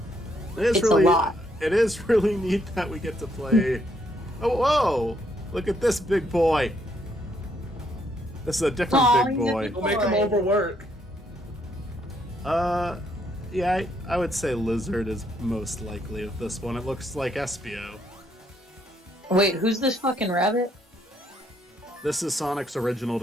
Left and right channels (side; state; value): both; normal; correlation 0.72